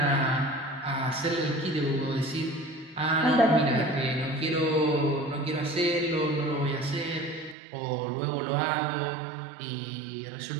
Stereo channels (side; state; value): left; drops out; at 7.6 s